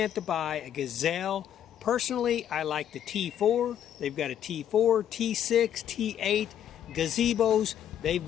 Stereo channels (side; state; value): right; quieter; 10.1 dB